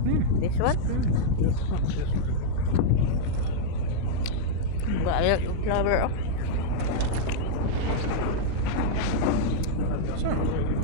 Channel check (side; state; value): both; different; correlation -0.03